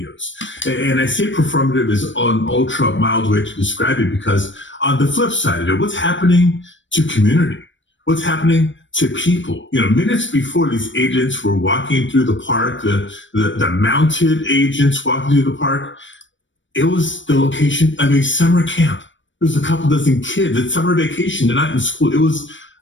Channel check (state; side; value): late; right; 0.55 ms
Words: And I say performative is an ultra mild way to describe it because on the flip side of it, what's happening to community? What's happening to people? Minutes before these agents were walking through the park, the mounted agents walking through the park, it was the location of a summer camp. There was a couple dozen kids at summer vacation. They're not in school. It was